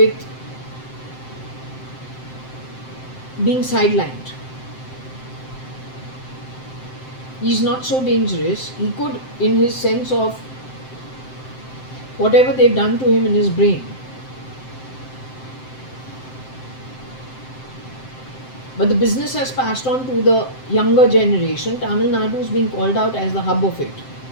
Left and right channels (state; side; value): late; right; 7.7 ms